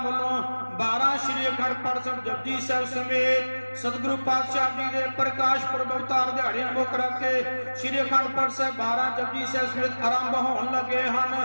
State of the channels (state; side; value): inverted; both; correlation -1.00